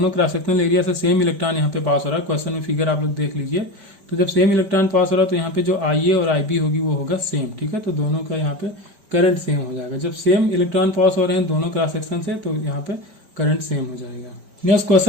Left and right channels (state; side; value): late; left; 5.1 ms